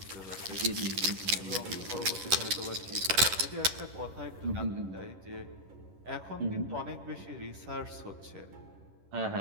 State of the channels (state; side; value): late; left; 11 ms